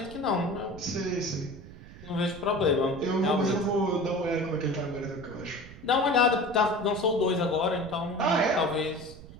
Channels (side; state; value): right; noise; rumble, 17 dB below the sound